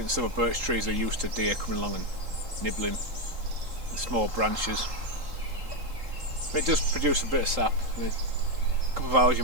the silver birch trees are used to deer coming along and nibbling the small branches. But it does produce a bit of sap. In a couple of hours you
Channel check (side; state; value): left; late; 3.8 ms